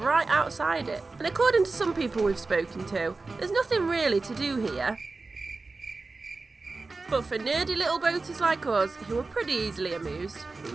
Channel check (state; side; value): quieter; left; 3.7 dB